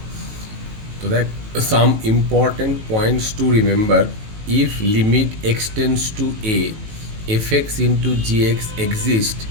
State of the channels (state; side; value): late; left; 18 ms